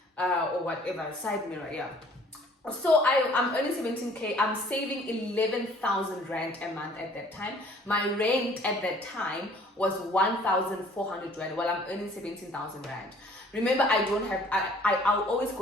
or whatever, side mirror, yeah. So I'm earning 17K. I'm saving 11,000 Rand a month at that time. My rent at that time was 1,400 Rand. Well, I'm earning 17,000 Rand. Remember, I'll always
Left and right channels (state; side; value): normal; both; correlation 0.55